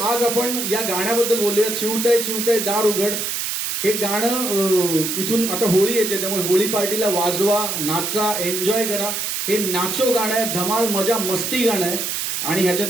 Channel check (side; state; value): right; noise; hiss, 2 dB below the sound